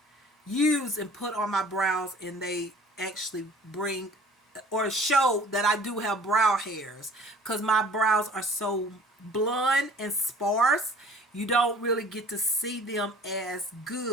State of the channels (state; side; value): normal; both; correlation 0.50